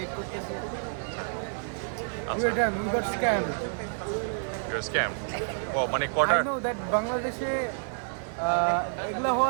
করতেছি। We got scammed. স্ক্যাম? ও মানে কটার? I know that বাংলাদেশে এগুলো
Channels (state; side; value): silent; left; digital silence